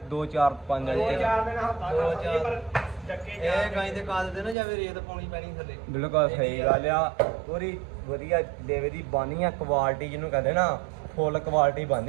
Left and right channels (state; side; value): drops out; left; at 4.5 s